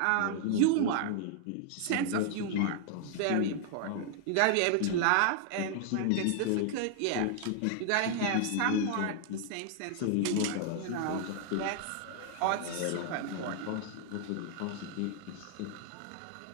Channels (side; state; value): both; different; correlation 0.00